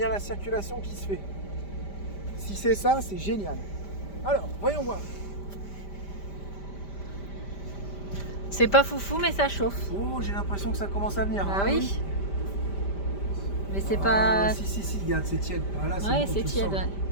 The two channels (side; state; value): right; late; 5.1 ms